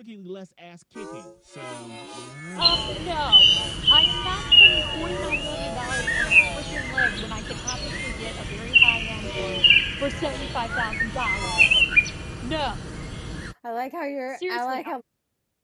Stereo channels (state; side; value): identical; both; correlation 1.00